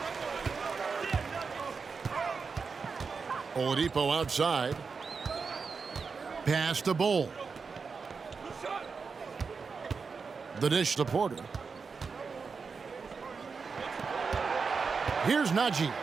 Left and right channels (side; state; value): left; quieter; 5.1 dB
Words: Oladipo outside. Pass to Bull. The dish to Porter. Here's Najee.